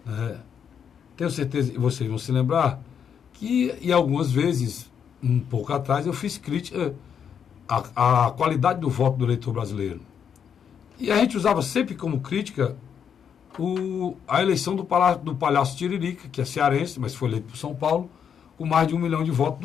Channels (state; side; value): quieter; right; 7.8 dB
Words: tenho certeza que vocês vão se lembrar, que e algumas vezes, um pouco atrás, eu fiz crítica à qualidade do voto do eleitor brasileiro. E a gente usava sempre como crítica a eleição do Palhaço Tiririca, que é cearense, mas foi eleito por São Paulo, com mais de 1 milhão de votos,